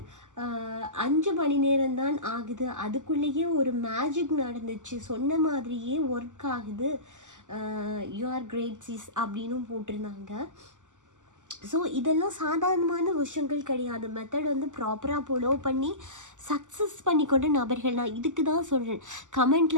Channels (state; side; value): late; left; 0.86 ms